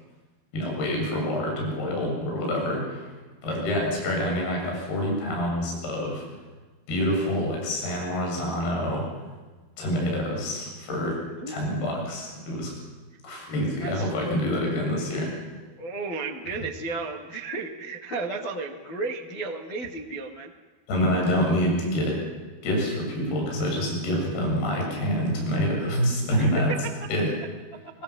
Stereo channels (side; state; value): right; late; 12 ms